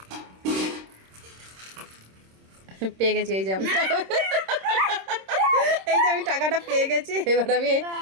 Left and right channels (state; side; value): late; left; 26 ms